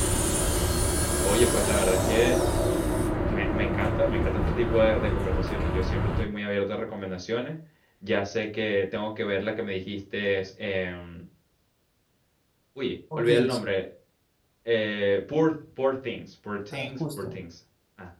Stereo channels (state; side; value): identical; both; correlation 1.00